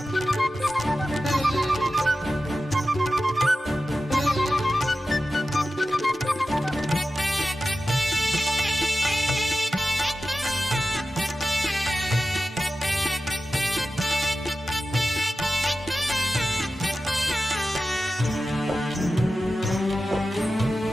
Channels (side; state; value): both; normal; correlation 0.93